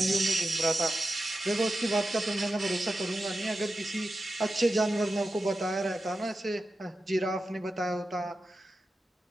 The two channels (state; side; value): normal; both; correlation 0.91